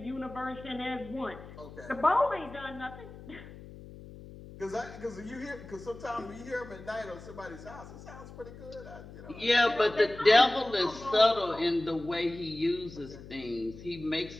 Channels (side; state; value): left; noise; hum, 16 dB below the sound